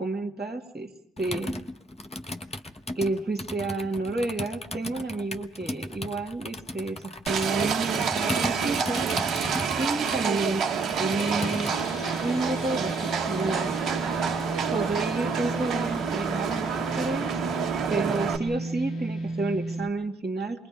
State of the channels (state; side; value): quieter; left; 3.6 dB